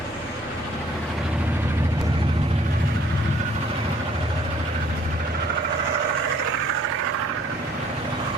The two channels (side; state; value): both; normal; correlation 0.59